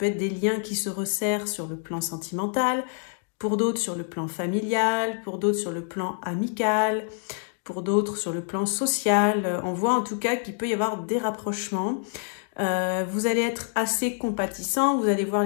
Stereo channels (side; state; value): right; silent; 61 dB below the other